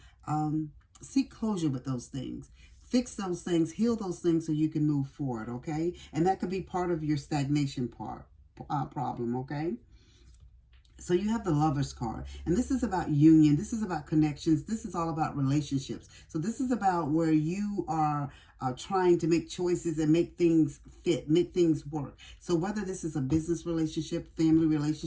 seek closure with those things. Fix those things, heal those things so you can move forward, okay? And that could be part of your stagnation problem, okay? So you have the Lover's card, and this is about union. This is about connections. This is all about relationships. So this is about where you are trying to make choices and make things fit, make things work. So whether this is a business relationship, family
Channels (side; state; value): both; identical; correlation 1.00